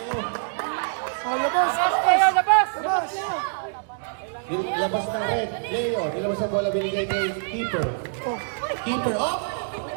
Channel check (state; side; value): silent; left; digital silence